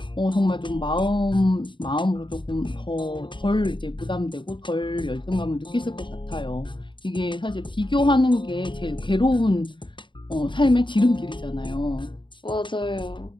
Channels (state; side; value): late; right; 0.23 ms